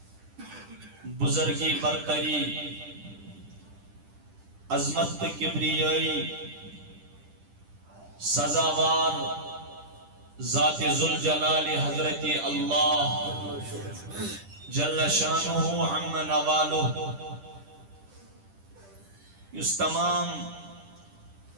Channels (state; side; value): late; left; 10 ms